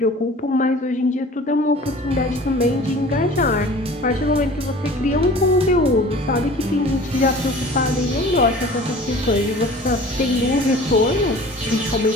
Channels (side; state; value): both; normal; correlation 0.44